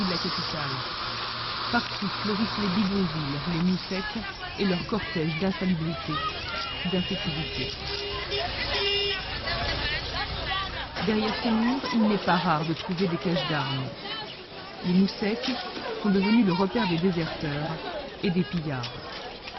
de la capitale. Partout fleurissent les bidonvilles, les moussecs et leur cortège d'insalubrité, d'insécurité. Derrière ces murs, il n'est pas rare de trouver des caches d'armes. Les moussecs sont devenus le repère des déserteurs et des pillards.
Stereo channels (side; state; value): both; identical; correlation 1.00